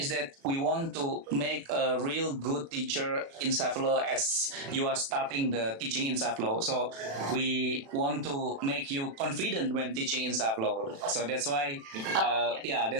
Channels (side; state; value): left; late; 36 ms